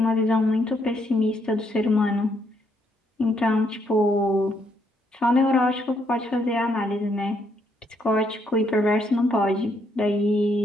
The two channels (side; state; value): both; normal; correlation 0.73